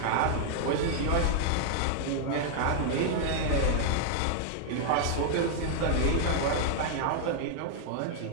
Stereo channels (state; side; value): different; both; correlation -0.01